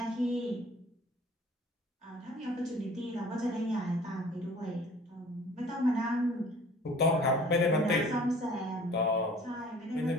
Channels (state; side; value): normal; both; correlation 0.50